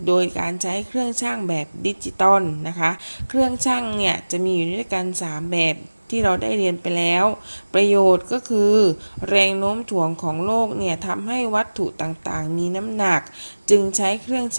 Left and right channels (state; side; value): inverted; both; correlation -1.00